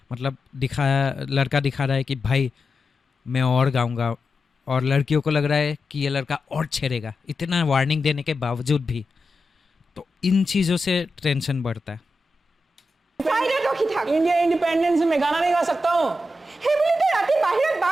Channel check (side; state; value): both; normal; correlation 0.89